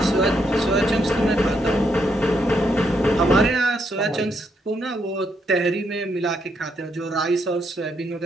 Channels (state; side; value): normal; both; correlation 0.77